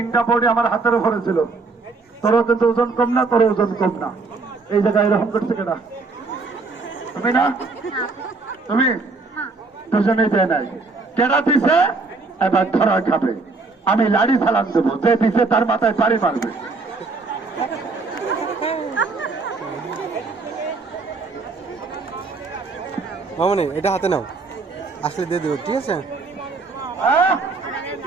বডি আমার হাতের উপরে ছিল। তোরও কিন্তু ওজন কম না, তোর ওজন কম না। এই জায়গায় এরকম করছে কেনা? তুমি না, তুমি দুজনেই দেয় নাই। কেনা দিছে, এবার ধরা খাবে। আমি লাড়ি চালান দেবো, যে দিছে তার মাথায় পাড়ি মারবে। মামনি এটা হাতে নাও, আসলে দিয়ে দেবো, ঠিক আছে? হ্যাঁ?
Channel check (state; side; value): quieter; left; 4.0 dB